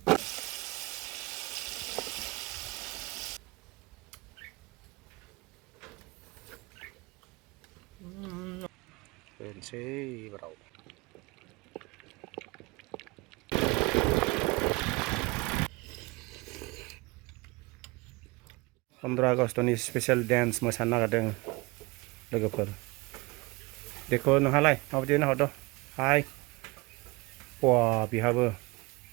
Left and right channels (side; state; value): left; quieter; 24.2 dB